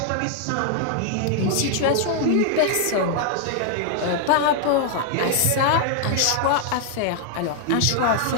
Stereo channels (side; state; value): both; different; correlation 0.00